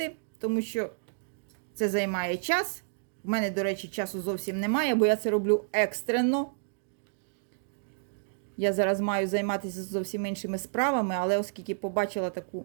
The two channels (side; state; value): left; silent; digital silence